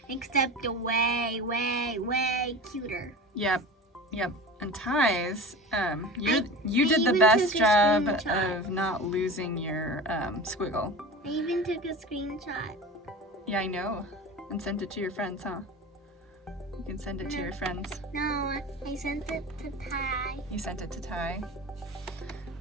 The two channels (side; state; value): both; normal; correlation 0.33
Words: except way, way, way cuter. Yep. And Ty's, you I did the even best took a job screenshot. of not losing your squiggle. I even took a screenshot. Yeah, I know. And sent it to your friends, huh? You can send it to your friends. No, I sent it to Ty. You sent it to Ty.